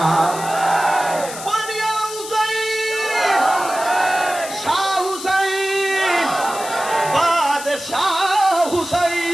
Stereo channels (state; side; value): noise; left; hiss, 11 dB below the sound